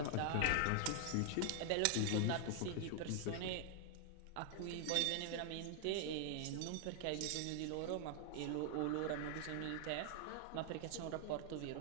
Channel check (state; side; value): different; both; correlation 0.00